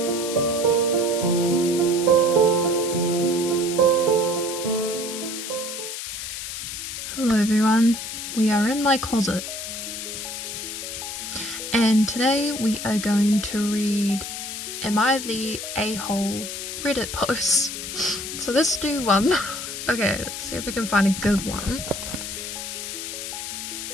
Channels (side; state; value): left; noise; hiss, 6 dB below the sound